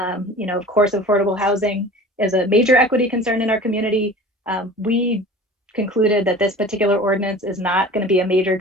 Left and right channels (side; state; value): both; normal; correlation 0.40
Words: course, affordable housing is a major equity concern in our community. We concluded that this particular ordinance is not going to be a major